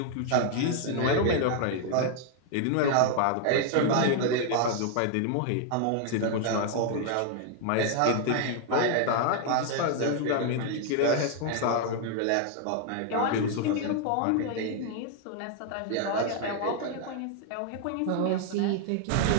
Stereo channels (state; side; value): different; both; correlation 0.00